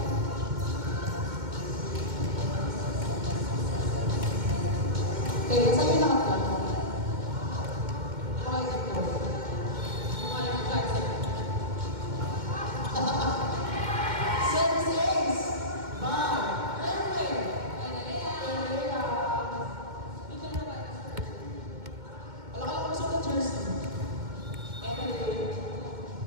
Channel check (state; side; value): late; left; 2.1 ms